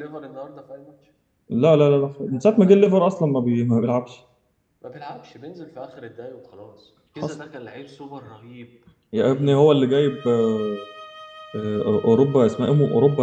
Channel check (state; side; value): identical; both; correlation 1.00